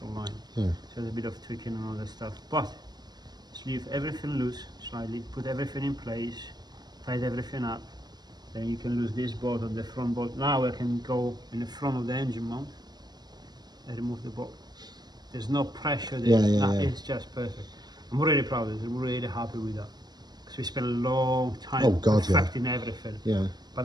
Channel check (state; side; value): late; left; 0.20 ms